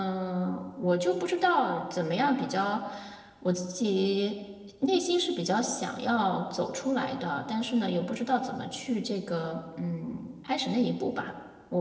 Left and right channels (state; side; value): identical; both; correlation 1.00